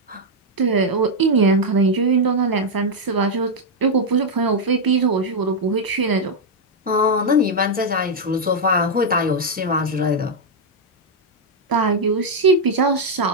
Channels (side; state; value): both; normal; correlation 0.00